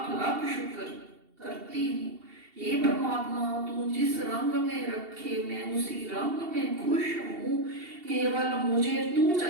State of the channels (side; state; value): left; late; 2.7 ms